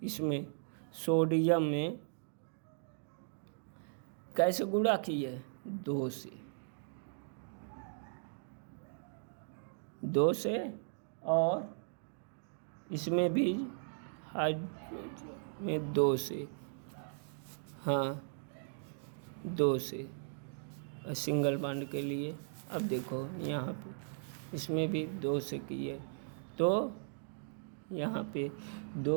इसमें सोडियम में कैसे गुणा किए, 2 से, और इसमें भी में 2 से, हाँ 2 से सिंगल बॉन्ड के लिए। अब देखो यहाँ पे इसमें भी 2 से किए, तो यहाँ पे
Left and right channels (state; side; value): silent; left; digital silence